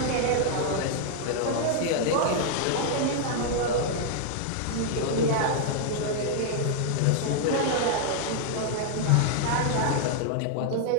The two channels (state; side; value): different; both; correlation -0.01